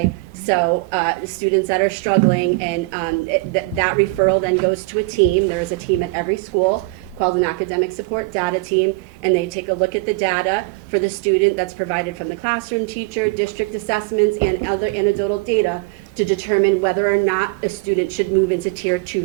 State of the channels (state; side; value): quieter; left; 24.0 dB